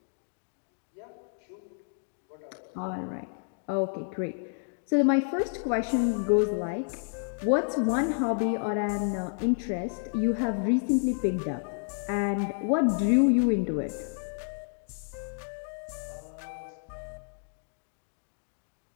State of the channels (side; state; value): right; silent; digital silence